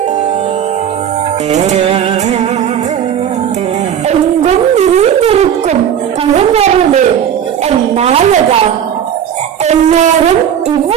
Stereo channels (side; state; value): left; quieter; 9.1 dB